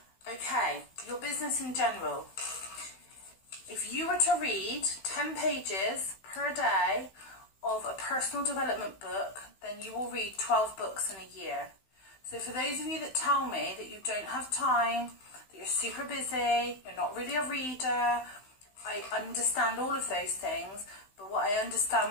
Okay, your business in general. If you were to read 10 pages per day of a personal development book, then you will read 12 books in a year. So for those of you that tell me that you don't have time, that you're super busy, you're not really a reader, I understand all of those things, but what I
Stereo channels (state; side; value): late; right; 16 ms